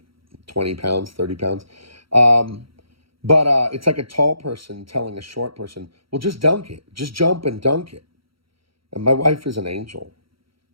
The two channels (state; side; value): late; left; 0.75 ms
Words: pounds, 30 pounds. But it's like a tall person telling a short person, well, just dunk it. Just jump and dunk it. And my wife is an angel.